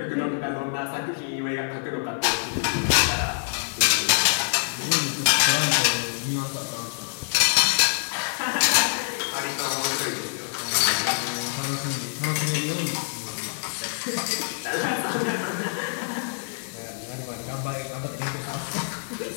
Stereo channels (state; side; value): silent; right; digital silence